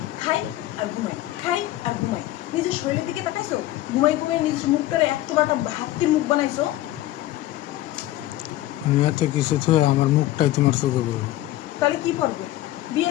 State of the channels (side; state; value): right; quieter; 15.3 dB